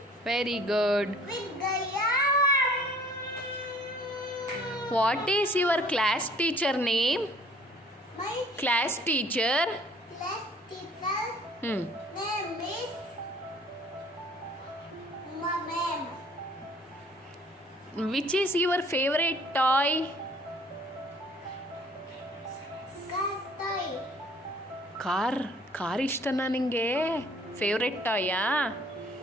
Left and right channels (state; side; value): normal; both; correlation 0.55